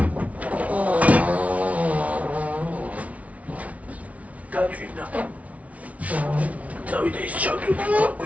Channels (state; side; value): late; left; 0.067 ms